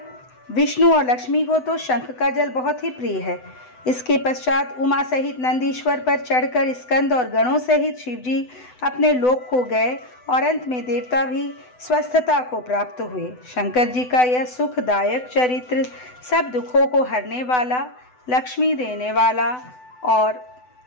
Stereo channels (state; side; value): late; right; 8.0 ms